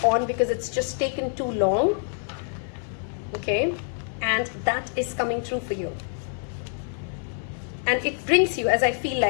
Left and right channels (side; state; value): right; silent; 60 dB below the other